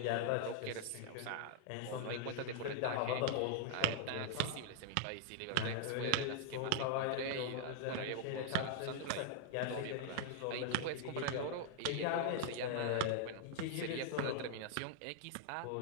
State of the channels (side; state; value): both; different; correlation -0.01